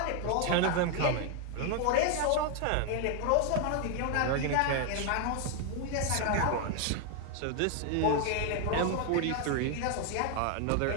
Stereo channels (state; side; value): different; both; correlation 0.00